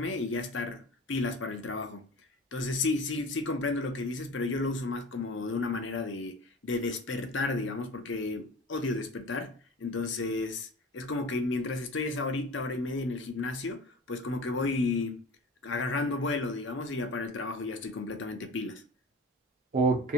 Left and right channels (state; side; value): normal; both; correlation 0.38